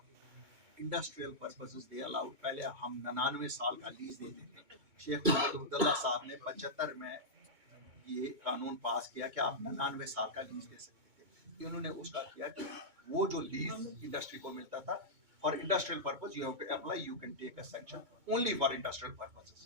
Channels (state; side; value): late; left; 2.2 ms